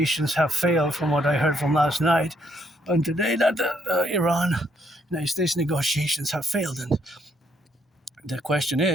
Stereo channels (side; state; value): both; normal; correlation 0.72